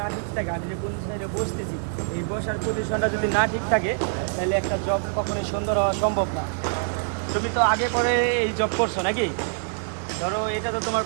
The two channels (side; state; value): left; silent; digital silence